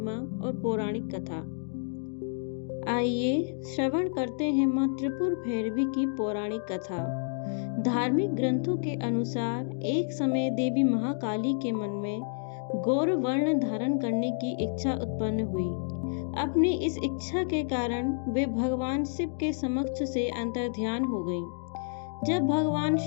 और पौराणिक कथा। आइए श्रवण करते हैं माँ त्रिपुर भैरवी की पौराणिक कथा। धार्मिक ग्रंथों के अनुसार एक समय देवी महाकाली के मन में गौर वर्ण धारण करने की इच्छा उत्पन्न हुई। अपनी इस इच्छा के कारण वे भगवान शिव के समक्ष से अंतर्ध्यान हो गईं। जब भगवान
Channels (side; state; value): right; silent; digital silence